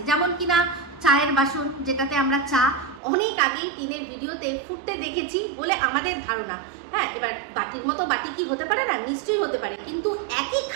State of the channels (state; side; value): drops out; left; at 3.0 s